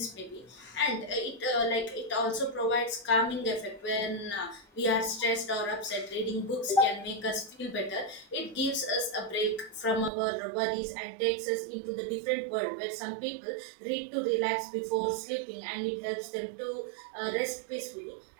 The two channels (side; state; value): left; drops out; at 10.1 s